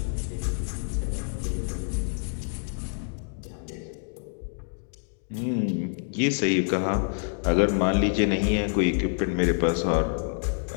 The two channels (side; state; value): right; silent; digital silence